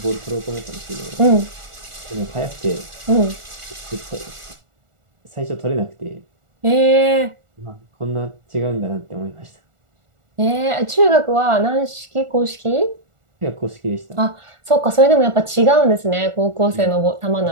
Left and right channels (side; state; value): left; late; 1.4 ms